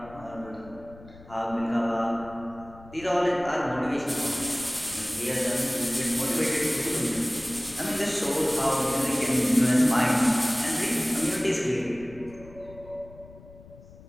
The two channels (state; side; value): noise; left; rumble, 20 dB below the sound